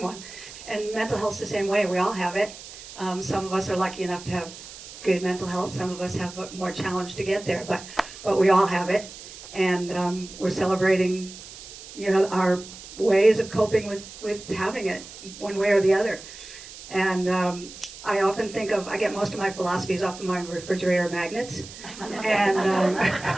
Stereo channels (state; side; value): noise; right; hiss, 15 dB below the sound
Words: one. And mental health's the same way. We all have it. Some of us are lucky enough to have good mental health. Some of us have more challenge to get there, but we all have it. And we're celebrating, our ways of coping with having it, one way or the other. And I often think I get most of my philosophies off of my refrigerator magnets. And